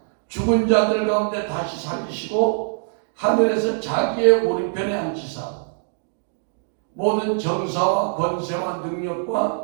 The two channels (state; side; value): silent; left; digital silence